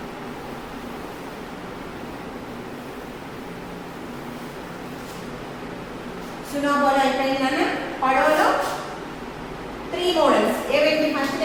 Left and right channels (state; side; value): identical; both; correlation 1.00